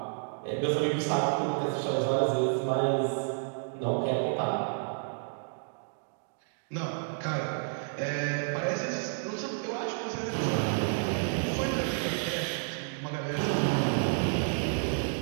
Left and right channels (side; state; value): left; silent; digital silence